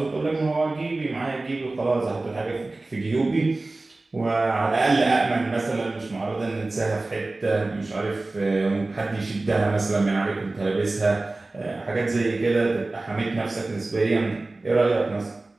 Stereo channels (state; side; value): quieter; left; 3.1 dB